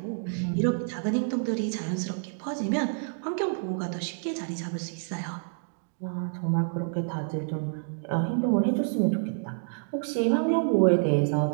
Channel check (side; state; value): left; silent; digital silence